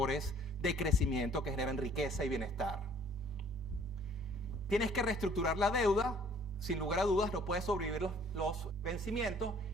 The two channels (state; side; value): normal; both; correlation 0.56